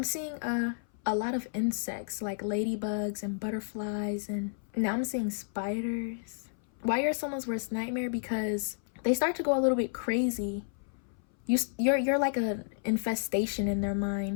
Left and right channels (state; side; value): silent; right; 57 dB below the other